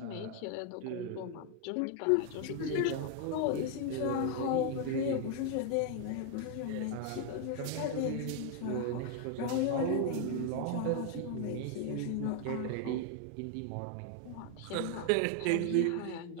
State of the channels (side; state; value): both; different; correlation 0.00